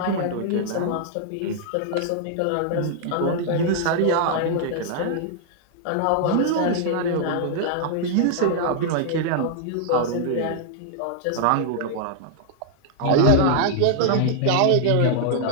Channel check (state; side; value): different; both; correlation -0.01